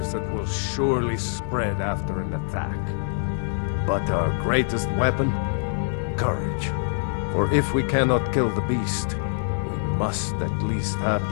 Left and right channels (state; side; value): silent; right; digital silence